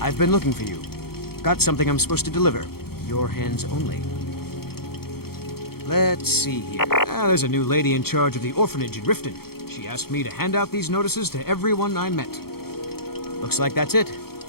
I've been looking for you. Got something I'm supposed to deliver. Your hands only. Let's see here. There's a new lady in charge of the orphanage in Riften. She asked me to hand out these notices to everyone I met. Looks like that's it.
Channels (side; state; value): right; late; 0.95 ms